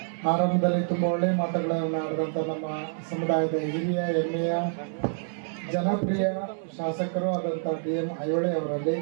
ಆರಂಭದಲ್ಲಿ ತುಂಬ ಒಳ್ಳೆಯ ಮಾತುಗಳನ್ನು ಆಡಿದಂಥ ನಮ್ಮ ಸಮುದಾಯದ ಹಿರಿಯ ಹೆಮ್ಮೆಯ ಜನಪ್ರಿಯ ಶಾಸಕರು ಆದಂಥ ಡಿ.ಎಂ. ಐಹೊಳೆ ಅವರಲ್ಲಿ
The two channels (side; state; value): left; silent; 59 dB below the other